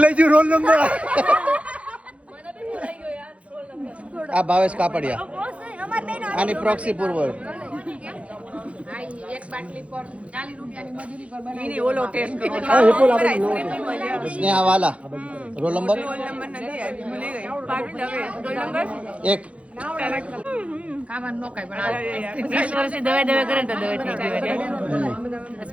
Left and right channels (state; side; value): late; left; 0.063 ms